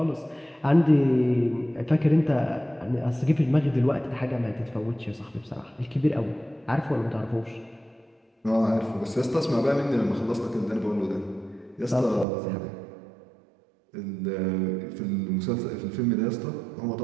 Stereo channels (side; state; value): left; drops out; at 12.2 s